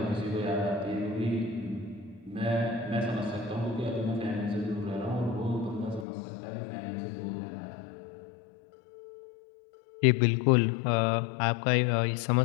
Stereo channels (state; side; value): drops out; right; at 6.1 s